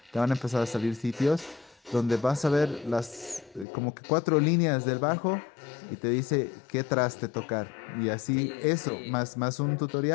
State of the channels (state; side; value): drops out; right; at 3.7 s